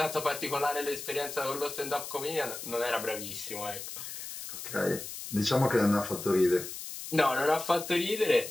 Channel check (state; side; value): noise; left; hiss, 9 dB below the sound